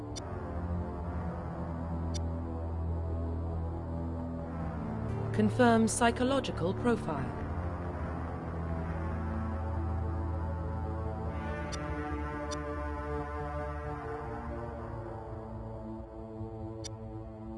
Confirm psychological profile.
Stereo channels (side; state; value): both; identical; correlation 1.00